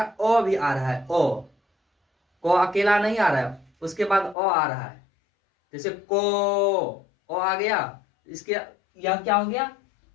है, ओ भी आ रहा है। को अकेला नहीं आ रहा है, उसके बाद ओ आ रहा है। जैसे को, ओ आ गया, इसके यह क्या हो गया,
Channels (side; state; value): right; drops out; at 4.4 s